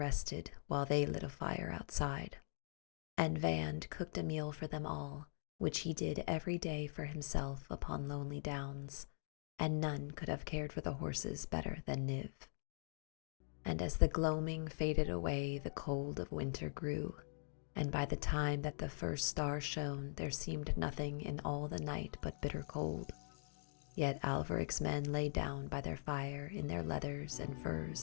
while they lit a fire outside. And Vand cooked a meal for them all, which he did every day for himself upon lonely downs, and none could have cared for the horses better than Niv. And as the gloaming faded away, the cold of winter grew, and by the time that the first star shone, there seemed nothing in all the night but bitter cold. Yet Alveric's men lay down by their fire in their leathers and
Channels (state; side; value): silent; right; digital silence